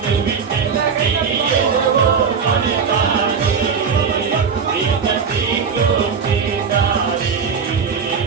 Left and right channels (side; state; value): left; quieter; 6.0 dB